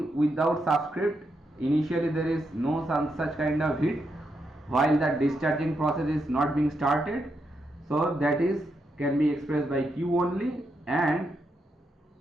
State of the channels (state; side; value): normal; both; correlation 0.82